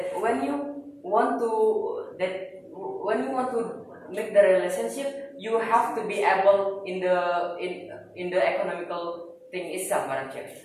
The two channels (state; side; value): identical; both; correlation 1.00